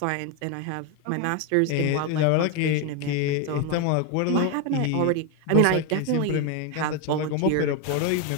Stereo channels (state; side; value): different; both; correlation 0.02